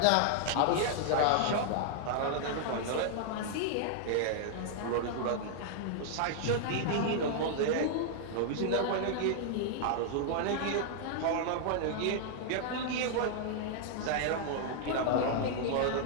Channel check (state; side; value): different; both; correlation 0.00